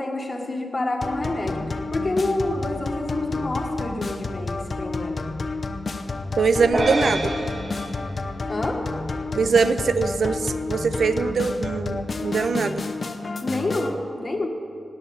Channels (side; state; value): both; normal; correlation 0.88